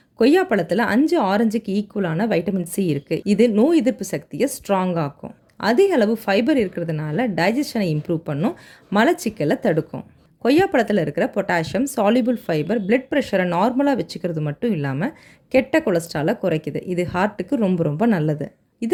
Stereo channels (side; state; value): both; identical; correlation 1.00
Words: கொய்யாப்பழத்தில் 5 ஆரஞ்சுக்கு ஈக்குவலான வைட்டமின் சி இருக்குது. இது நோய் எதிர்ப்பு சக்தியை ஸ்ட்ராங் ஆக்கும். அதிக அளவு ஃபைபர் இருக்கிறதுனால டைஜஷனை இம்ப்ரூவ் பண்ணும், மலச்சிக்கலை தடுக்கும். கொய்யாப்பழத்தில் இருக்கிற பொட்டாசியம், சால்யூபிள் ஃபைபர் பிளட் ப்ரெஷரை நார்மலாக வச்சுக்கிறது மட்டும் இல்லாமல் கெட்ட கொலஸ்ட்ராலை குறைக்குது. இது ஹார்ட்டுக்கு ரொம்ப ரொம்ப நல்லது.